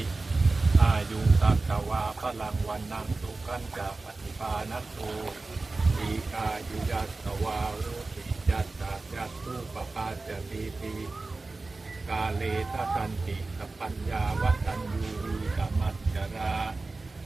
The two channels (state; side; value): quieter; left; 3.5 dB